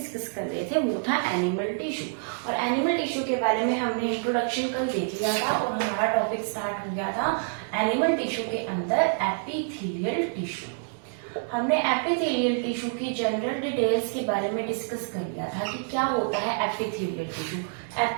कर रहे थे वो था एनिमल टिश्यू। और एनिमल टिश्यू के बारे में हमने इंट्रोडक्शन कल देख लिया था और हमारा टॉपिक स्टार्ट हो गया था एनिमल टिश्यू के अंदर एपिथेलियल टिश्यू। हमने एपिथेलियल टिश्यू की जनरल डिटेल्स के बारे में डिस्कस कर लिया था कि क्या होता है एपिथेलियल टिश्यू।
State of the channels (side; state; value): left; silent; 60 dB below the other